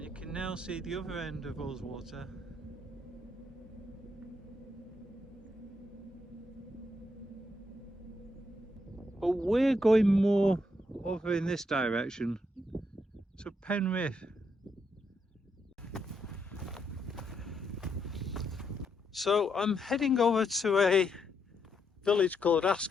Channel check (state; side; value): normal; both; correlation 0.78